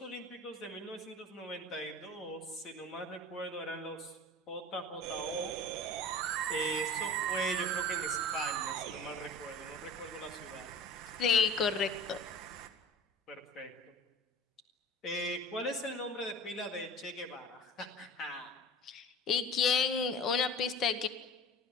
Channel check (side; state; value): both; normal; correlation 0.38